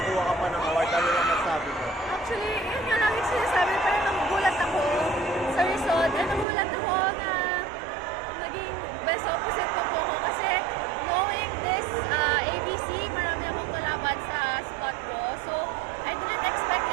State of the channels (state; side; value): drops out; left; at 6.5 s